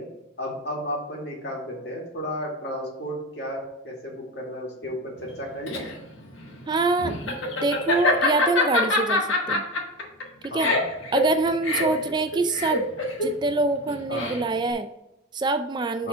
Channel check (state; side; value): normal; both; correlation 0.23